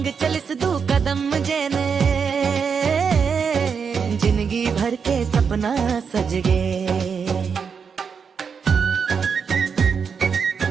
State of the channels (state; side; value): quieter; left; 6.2 dB